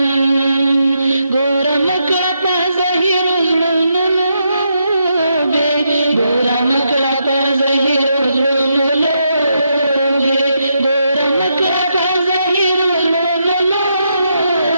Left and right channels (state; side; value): inverted; both; correlation -0.81